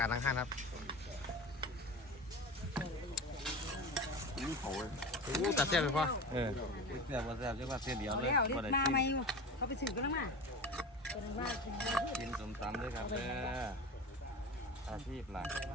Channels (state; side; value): normal; both; correlation 0.31